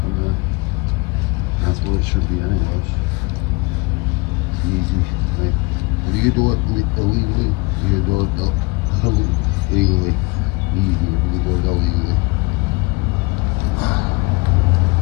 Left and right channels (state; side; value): quieter; right; 25.3 dB